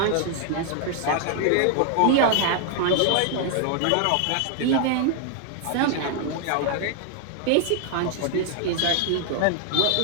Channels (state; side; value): different; both; correlation 0.00